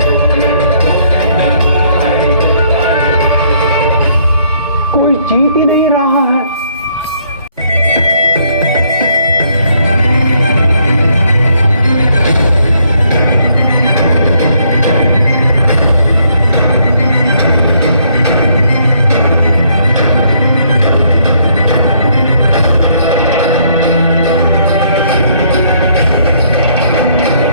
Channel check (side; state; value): both; inverted; correlation -0.68